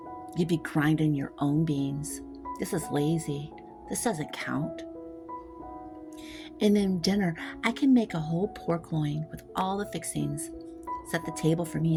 you'd be grinding your own beans. This is lazy. This doesn't count. And then dinner, I can make a whole pork loin with all the fixings, set the table for me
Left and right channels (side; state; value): both; identical; correlation 1.00